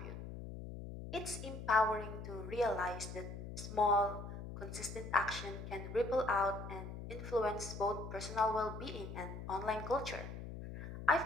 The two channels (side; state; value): left; noise; hum, 9 dB below the sound